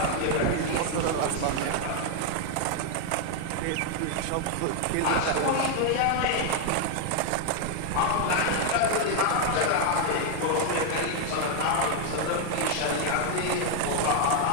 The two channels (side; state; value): both; different; correlation 0.00